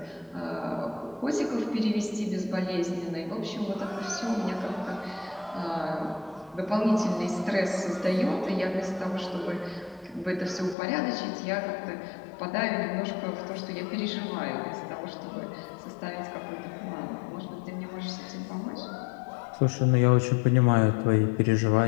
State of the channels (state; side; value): drops out; right; at 10.8 s